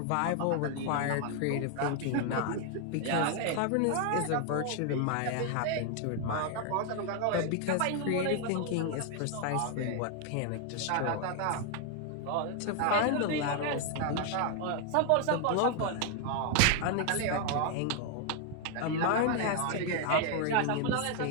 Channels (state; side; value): different; both; correlation 0.00